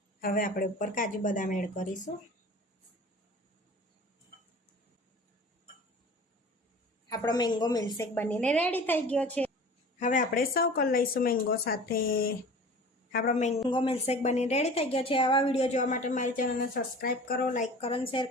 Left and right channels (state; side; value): normal; both; correlation 0.41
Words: હવે આપણે ઉપર કાજુ બદામ એડ કરીશું। આપણો મેંગો મિલ્કશેક બનીને રેડી થઈ ગયો છે। હવે આપણે સર્વ કરી લઈશું મેંગો સાથે। આપણો મેંગો મિલ્કશેક બનીને રેડી થઈ ગયો છે। આવા વિડીયો જોવા માટે મારી ચેનલને સબસ્ક્રાઈબ કરો, લાઈક કરો અને શેર